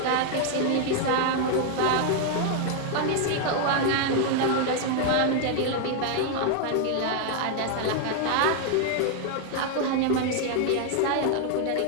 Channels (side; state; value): both; different; correlation 0.00